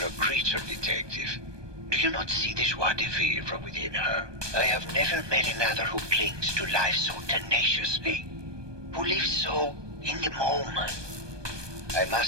creature, detective. Do you not see the joie de vivre from within her? I have never met another who clings to life so tenaciously. Who lives so in the moment. I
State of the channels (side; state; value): left; late; 1.2 ms